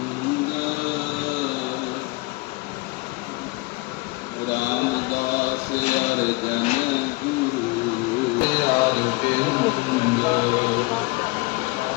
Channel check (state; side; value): quieter; right; 23.9 dB